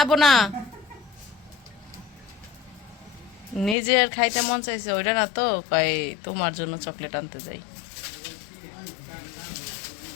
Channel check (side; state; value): right; drops out; at 3.8 s